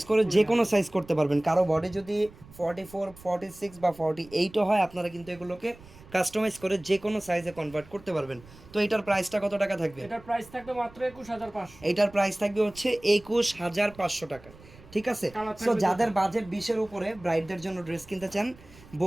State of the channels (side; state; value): right; noise; rumble, 22 dB below the sound